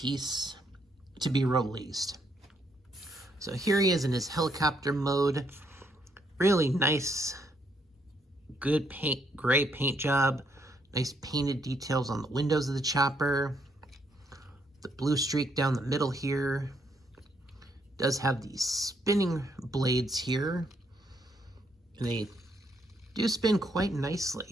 to be released. So here he is in his helicopter mode. Really nice, good gray paint job. Nice painted details on the windows of the chopper. The blue streak down the middle here. Does have these spinning blades here. And they do spin quite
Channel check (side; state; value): both; normal; correlation 0.73